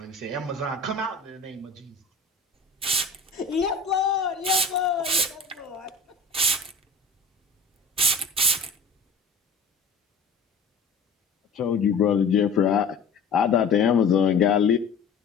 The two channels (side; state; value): right; quieter; 4.0 dB